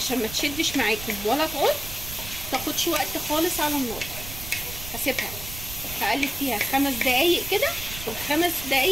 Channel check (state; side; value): noise; right; rumble, 11 dB below the sound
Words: ما تشدش معاكم ولا تعض، تاخدش وقت خالص على النار. هسيبها هقلب فيها 5 دقايق كده، والخمس